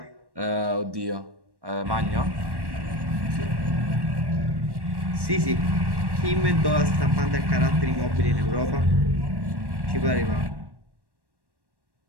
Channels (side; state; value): left; late; 1.1 ms